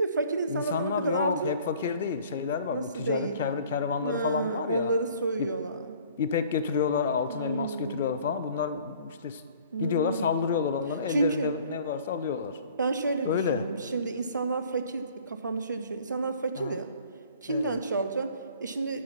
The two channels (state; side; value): inverted; both; correlation -0.52